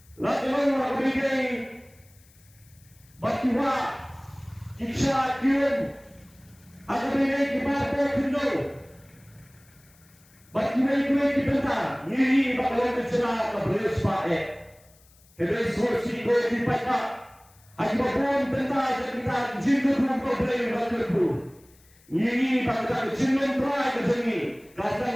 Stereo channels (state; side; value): noise; left; hiss, 29 dB below the sound